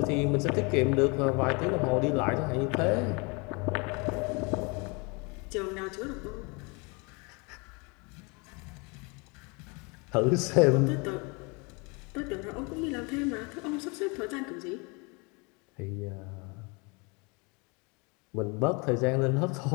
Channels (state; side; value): quieter; right; 29.8 dB